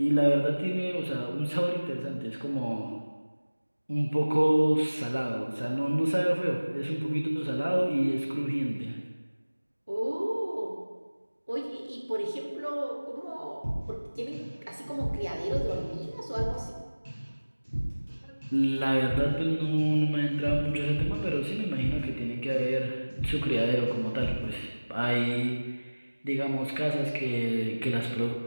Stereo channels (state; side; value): inverted; both; correlation -1.00